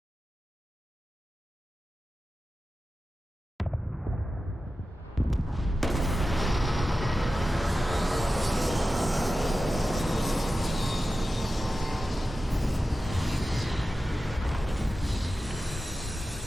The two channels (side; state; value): both; normal; correlation 0.93